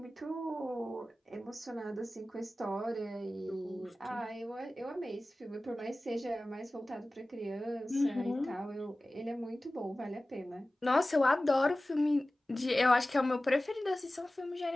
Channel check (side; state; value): both; normal; correlation 0.97